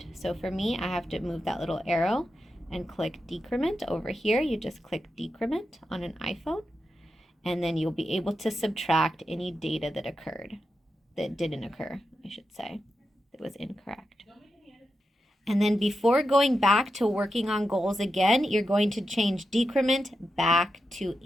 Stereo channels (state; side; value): normal; both; correlation 0.89